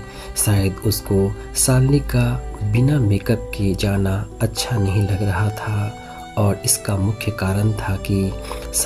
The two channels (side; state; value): both; identical; correlation 1.00